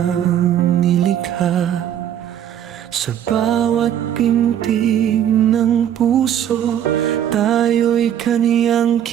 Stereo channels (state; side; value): quieter; left; 10.2 dB